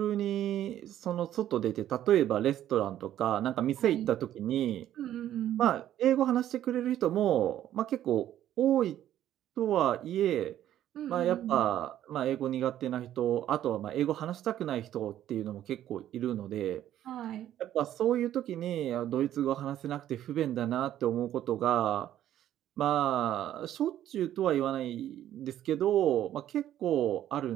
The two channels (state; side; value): quieter; left; 11.9 dB